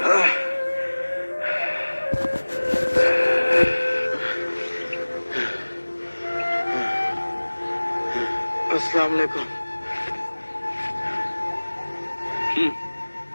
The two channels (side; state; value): both; inverted; correlation -1.00